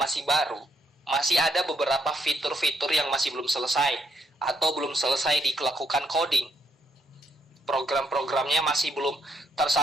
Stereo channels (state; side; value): normal; both; correlation 0.73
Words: baru, masih ada beberapa fitur-fitur yang masih belum selesai atau belum selesai dilakukan coding. Program-programnya masih belum